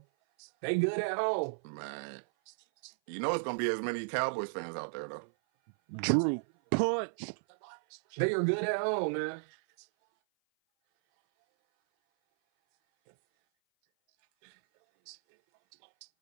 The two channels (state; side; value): silent; left; 55 dB below the other